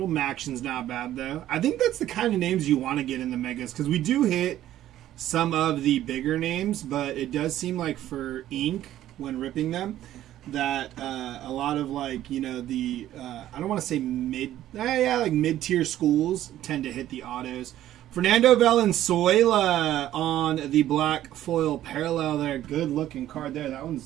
Maction's not bad, though. I think that's the kind of names you want to get in the Megas, because we do hit some of the bigger names, but it does seem like for ink, when ripping them, that a lot of, like, you know, the, I don't want to say like mid-tier schools tend to hit the autos. Fernando Valenzuela on the black foil parallel there. Good looking card there. That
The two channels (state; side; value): quieter; left; 12.9 dB